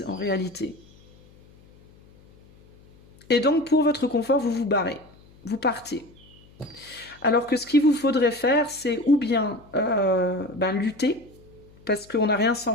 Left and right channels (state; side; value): noise; left; hum, 26 dB below the sound